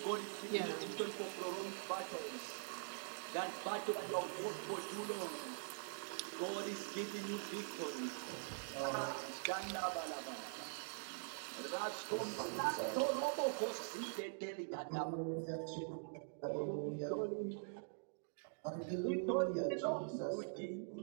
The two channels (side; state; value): left; silent; digital silence